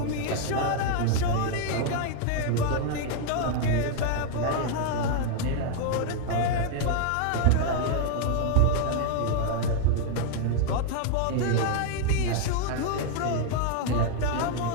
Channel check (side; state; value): both; different; correlation 0.00